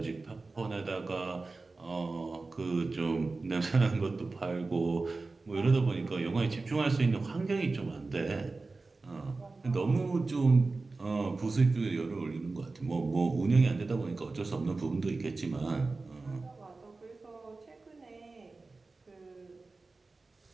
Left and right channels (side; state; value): left; quieter; 3.7 dB